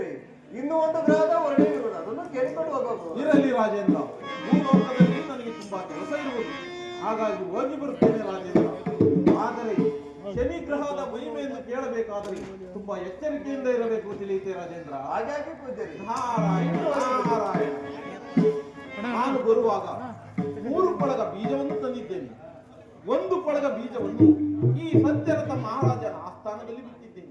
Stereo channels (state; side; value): identical; both; correlation 1.00